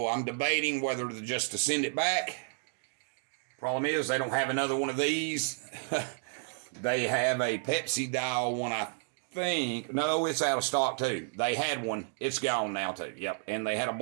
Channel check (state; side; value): silent; left; 57 dB below the other